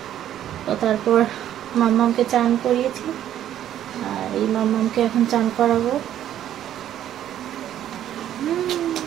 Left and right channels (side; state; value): left; quieter; 11.3 dB